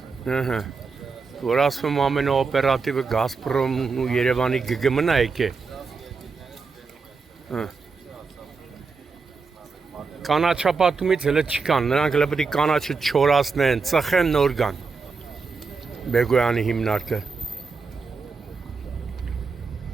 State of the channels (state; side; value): quieter; left; 4.7 dB